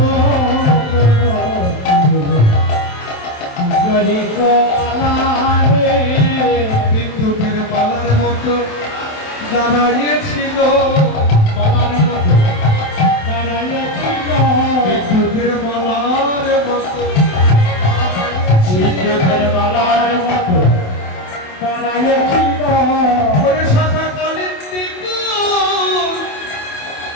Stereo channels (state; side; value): late; right; 27 ms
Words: যদি কোমারে বিদ্যুতের মালার মতো দাঁড়িয়েছিল, মালার মতো দাঁড়াইয়াছিল, বিদ্যুতের মালার মতো বিদ্যুতের মালার মতো দাঁড়াইয়াছিল, ওরে শাখা কালিন্দী কুল